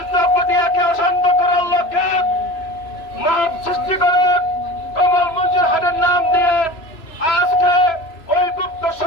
পটিয়াকে অশান্ত করার লক্ষ্যে মাপ সৃষ্টি করে কমল মঞ্জুর হাটের নাম দিয়ে আজকে ওই গুপ্ত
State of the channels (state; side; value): late; right; 2.9 ms